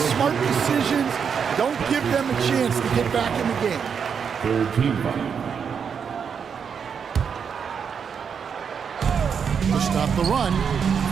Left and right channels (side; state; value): left; quieter; 6.8 dB